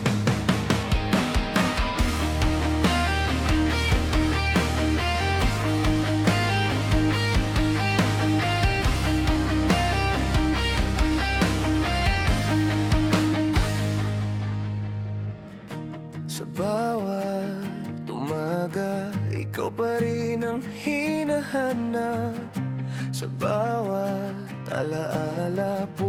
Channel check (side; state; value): both; identical; correlation 1.00